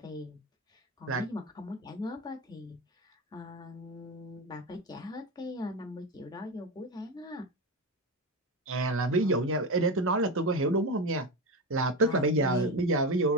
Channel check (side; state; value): both; normal; correlation 0.18